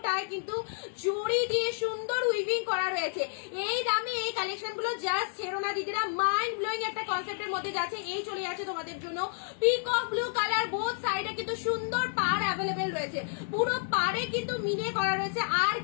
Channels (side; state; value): right; silent; 58 dB below the other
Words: কিন্তু জড়ি দিয়ে সুন্দর উইভিং করা রয়েছে। এই দামে এই কালেকশন গুলো জাস্ট ছেড়ো না দিদিরা, মাইন্ড ব্লোয়িং একটা কনসেপ্টের মধ্যে যাচ্ছে। এই চলে যাচ্ছে তোমাদের জন্য পিকক ব্লু কালার। বোথ সাইডে কিন্তু সুন্দর পার অ্যাভেলেবেল রয়েছে, পুরো পারে কিন্তু মিনে করা রয়েছে। আর